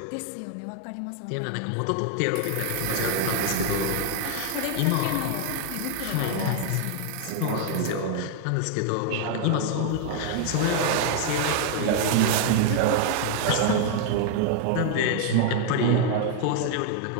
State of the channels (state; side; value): different; both; correlation 0.00